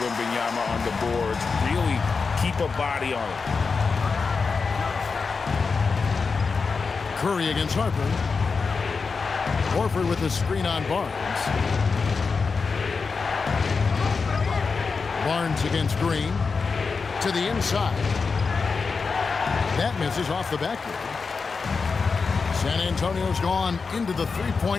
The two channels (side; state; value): right; quieter; 4.8 dB